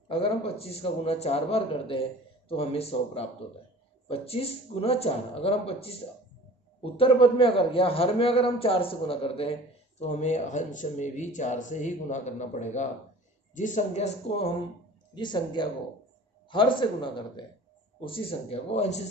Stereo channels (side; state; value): both; normal; correlation 0.44